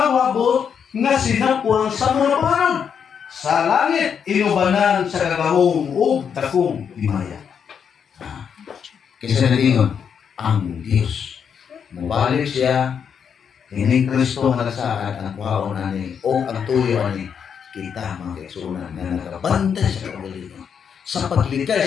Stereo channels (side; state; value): right; quieter; 7.3 dB